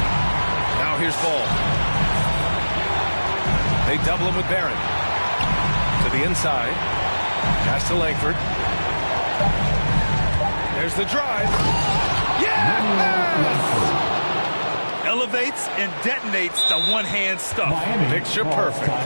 Now here's Ball. They double him with Barrett. To the inside. Pass to Langford. There's the drive. Elevates and detonates the one-hand stuff. Picture perfect.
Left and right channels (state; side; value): inverted; both; correlation -1.00